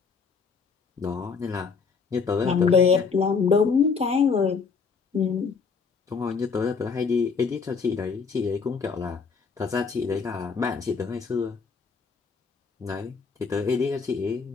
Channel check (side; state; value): right; quieter; 5.3 dB